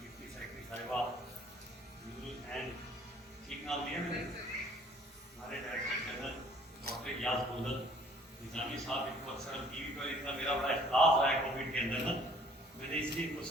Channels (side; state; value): both; normal; correlation 0.57